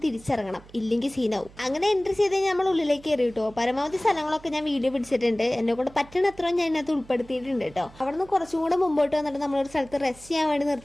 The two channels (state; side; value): noise; right; hum, 22 dB below the sound